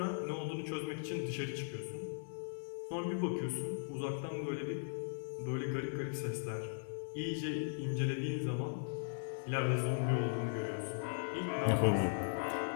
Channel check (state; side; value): silent; right; 52 dB below the other